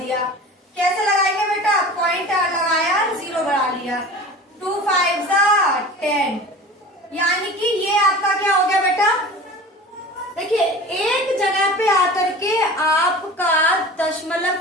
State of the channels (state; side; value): normal; both; correlation 0.38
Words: कैसे लगाएंगे बेटा? पॉइंट लगाया, 0 बढ़ा लिया। 2 5 10, यानी कि ये आपका क्या हो गया बेटा? देखिए एक जगह पे आकर के आपका दशमलव